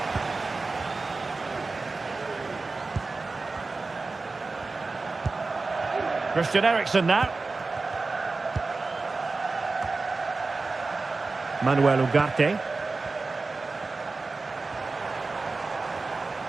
Christian Eriksen now. Manuel Ugarte.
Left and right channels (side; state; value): left; quieter; 3.8 dB